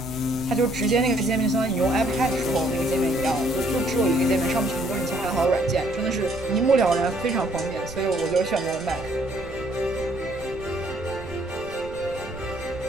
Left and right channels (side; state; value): right; noise; rumble, 15 dB below the sound